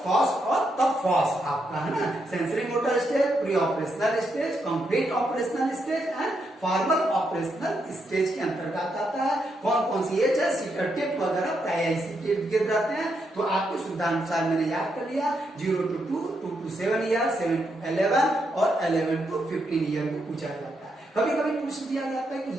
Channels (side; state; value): both; normal; correlation 0.80